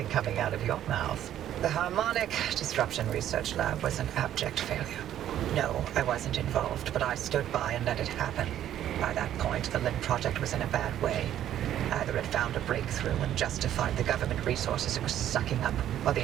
coming out of your mouth. The Harmonic Disruption Research Lab was an abject failure. No, I wasn't involved, but I stood by and let it happen. By that point, the LIM project was in a bad way. Either it found a breakthrough and justified the government resources it was sucking up, or the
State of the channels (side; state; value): left; quieter; 11.4 dB